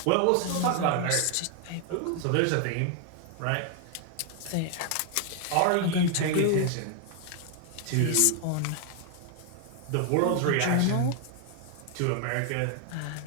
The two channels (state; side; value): different; both; correlation 0.00